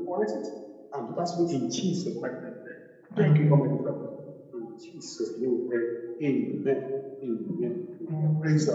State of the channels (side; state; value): both; identical; correlation 1.00